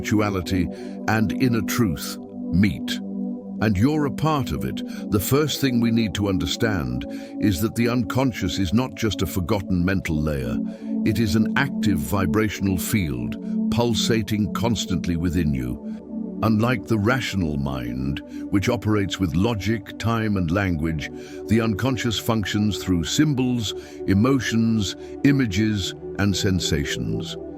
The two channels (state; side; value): identical; both; correlation 1.00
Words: and inner truth meet. And you're a part of it. The first thing we need to understand is that the unconscious is not just a forgotten mental layer. It is an active vibrational field, pulsating constantly within you. Unlike the rational mind, which operates with logic, time, and language, the unconscious functions through symbols, emotions, images, and sensations.